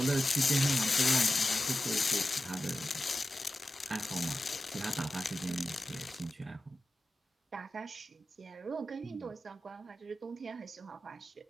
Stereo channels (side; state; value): both; normal; correlation 0.93